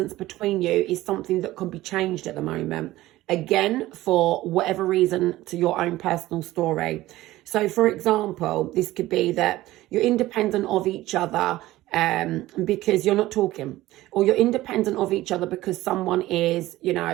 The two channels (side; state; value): left; quieter; 16.6 dB